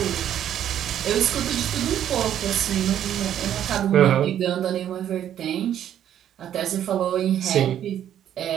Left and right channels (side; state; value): left; quieter; 10.5 dB